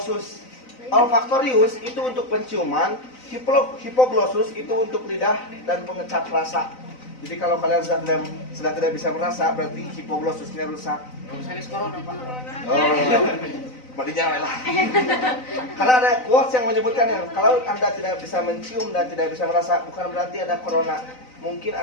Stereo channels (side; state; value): right; late; 3.9 ms